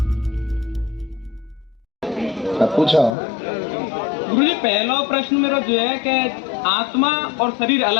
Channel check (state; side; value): drops out; right; at 3.2 s